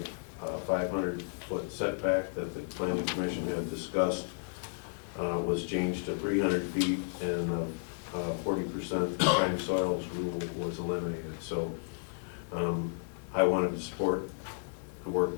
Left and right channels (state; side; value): silent; right; digital silence